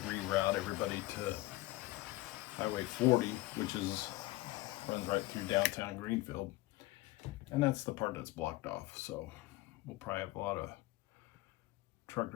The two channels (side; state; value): right; quieter; 18.9 dB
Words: reroute everybody to Highway 40, which runs right through downtown Greenfield, and that's the part that's blocked off. So we'll probably have a lot of truck